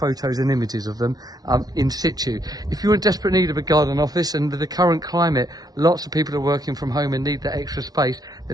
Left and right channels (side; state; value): left; late; 0.19 ms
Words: and images of them in situ. If you're in desperate need of a garden office, and with the current climate, lots of people are working from home and need that extra space,